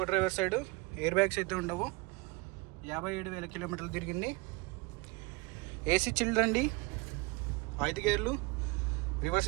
driver side, air bags అయితే ఉండవు. 57,000 కిలోమీటర్లు తిరిగింది. ఏసీ చిల్డ్ అండి, 5 గేర్లు,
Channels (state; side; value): quieter; left; 25.5 dB